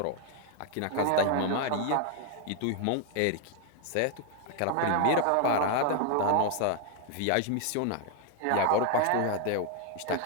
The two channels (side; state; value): both; different; correlation 0.00